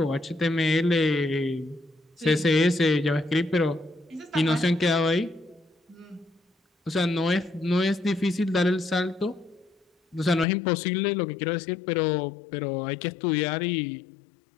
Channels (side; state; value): right; drops out; at 10.5 s